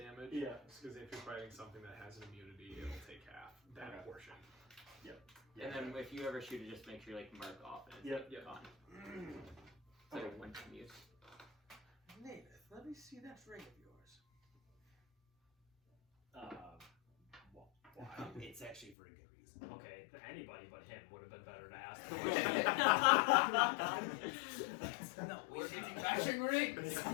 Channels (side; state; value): right; drops out; at 18.9 s